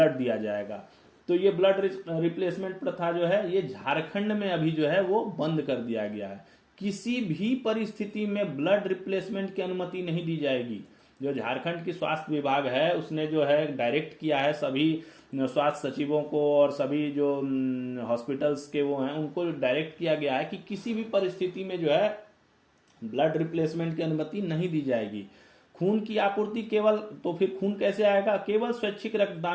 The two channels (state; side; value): identical; both; correlation 1.00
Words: दिया जाएगा। तो ये ब्लड रिप्लेसमेंट प्रथा जो है ये झारखंड में अभी जो है वो बंद कर दिया गया है। किसी भी परिस्थिति में ब्लड रिप्लेसमेंट की अनुमति नहीं दी जाएगी। जो झारखंड की स्वास्थ्य विभाग है उसने जो है डायरेक्ट किया है सभी स्वास्थ्य सचिवों को और सभी जो हॉस्पिटल्स के वो हैं उनको डायरेक्ट किया गया है कि किसी भी परिस्थिति में जो है ब्लड रिप्लेसमेंट की अनुमति नहीं दी जाएगी। खून की आपूर्ति केवल, तो फिर खून कैसे आएगा? केवल स्वैच्छिक